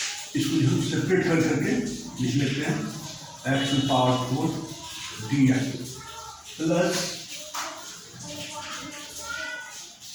इसको हम सेपरेट कर करके लिख लेते हैं x to power 4 d x plus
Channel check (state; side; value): identical; both; correlation 1.00